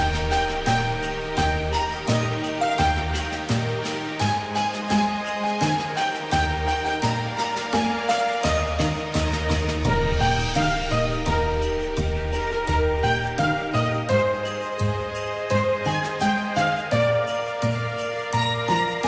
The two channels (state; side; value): identical; both; correlation 1.00